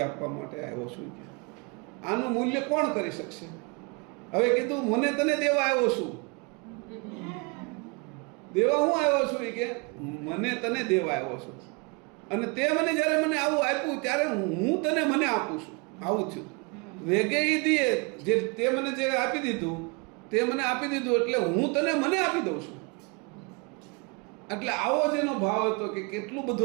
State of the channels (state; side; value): quieter; left; 31.1 dB